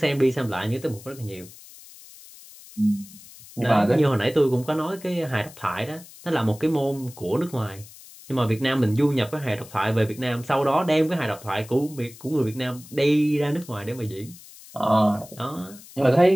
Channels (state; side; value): noise; left; hiss, 20 dB below the sound